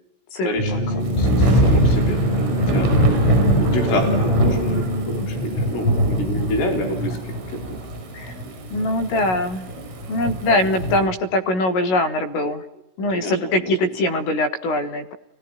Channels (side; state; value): right; late; 16 ms